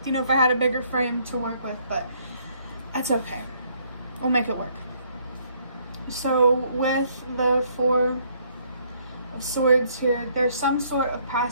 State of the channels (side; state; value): both; inverted; correlation -0.67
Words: if I had a bigger frame to work with, but that's okay. We'll make it work. So with the 4 of Swords here, there's some sort of